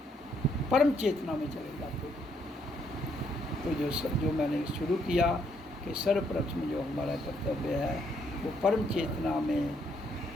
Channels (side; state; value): both; normal; correlation 0.72